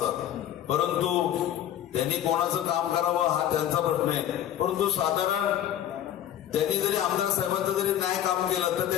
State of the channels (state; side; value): quieter; right; 11.2 dB